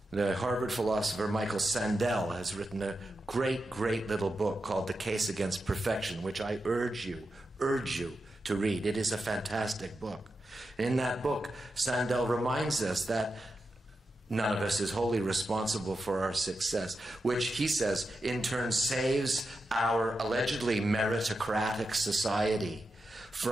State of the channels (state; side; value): normal; both; correlation 0.89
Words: The Harvard philosopher Michael Sandel has written a great, great little book called The Case Against Perfection, which I urge you to read. It is a fantastic book. In that book, Sandel reminds us that none of us is wholly responsible for our success, which he says in turn saves our allegedly meritocratic society